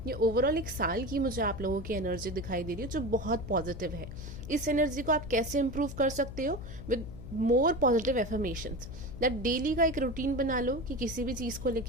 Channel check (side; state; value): left; noise; hum, 10 dB below the sound